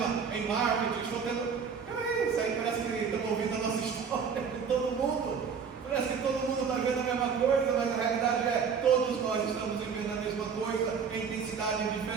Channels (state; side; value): quieter; left; 6.3 dB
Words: em marketing, estou tendo... Peraí, isso aí parece que estamos ouvindo a nossa história de todo mundo. Parece que todo mundo está vendo a mesma coisa, mas a realidade é todos nós estamos vivendo a mesma coisa em intensidades